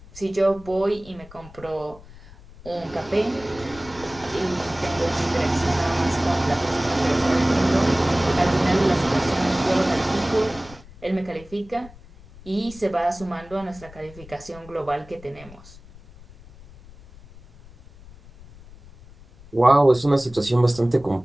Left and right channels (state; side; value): noise; left; rumble, 21 dB below the sound